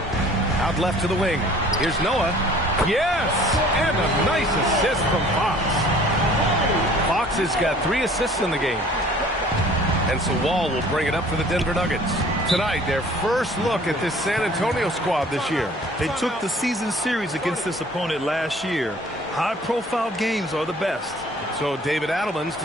Out left to the wing. Here's Noah. Yes! And a nice assist from Fox. Fox has got 3 assists in the game. And so Wall will bring it up for the Denver Nuggets. Tonight, their first look at this San Antonio squad this year. They took the season series against this opponent last year. High-profile games are the best. So David Adelman's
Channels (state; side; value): normal; both; correlation 0.52